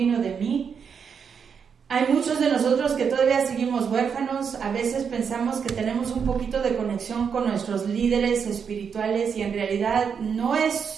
de mí. Hay muchos de nosotros que todavía seguimos huérfanos, a veces pensamos que tenemos un poquito de conexión con nuestros líderes espirituales y en realidad no es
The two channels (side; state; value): left; quieter; 6.7 dB